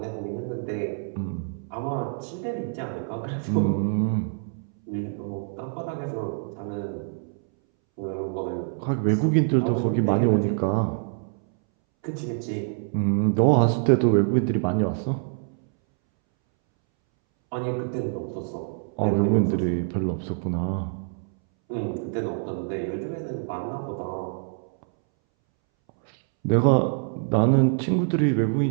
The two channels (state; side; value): silent; left; 61 dB below the other